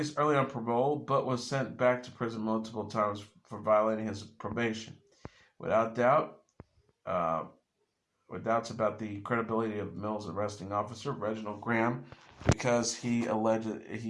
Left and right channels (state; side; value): identical; both; correlation 1.00